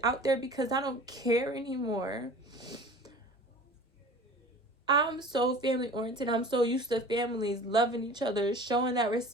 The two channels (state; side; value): normal; both; correlation 0.42